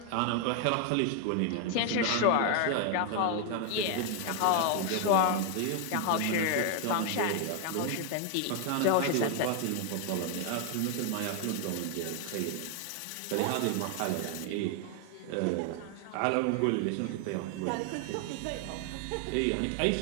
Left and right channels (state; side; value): different; both; correlation 0.00